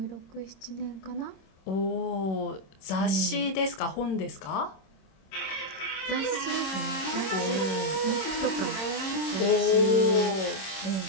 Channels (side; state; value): right; late; 26 ms